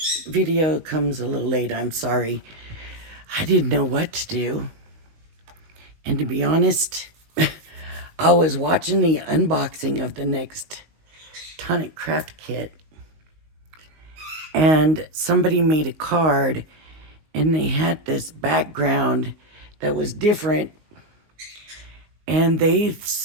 video comes a little late, I'm sorry. I didn't know what to do. And to be honest, I was watching the unboxing of the next tonic craft kit, and somebody made a card, and they had this background that was different. And they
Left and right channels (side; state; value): left; late; 19 ms